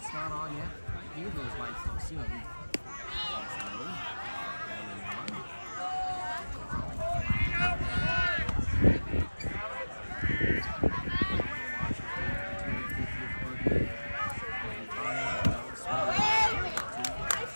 not on yet. Hear those lights though soon.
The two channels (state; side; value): inverted; both; correlation -1.00